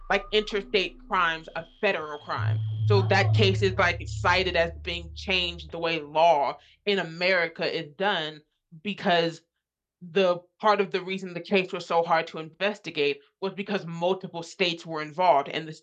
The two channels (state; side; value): identical; both; correlation 1.00